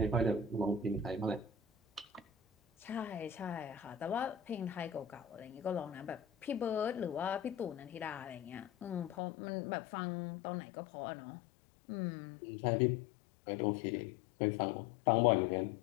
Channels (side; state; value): right; drops out; at 9.2 s